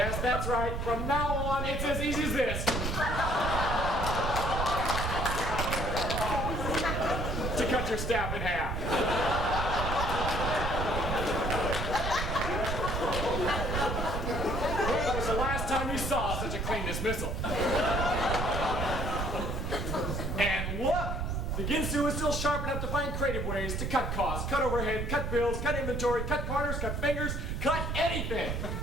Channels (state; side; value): noise; right; rumble, 2 dB below the sound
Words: that's right. From now on, it's as easy as this. To cut your staff in half. When was the last time you saw such a clean dismissal? And look, the Ginsu is still sharp enough to find creative ways to cut costs, cut overhead, cut bills, cut inventory, cut corners, cut fingers, cut anything.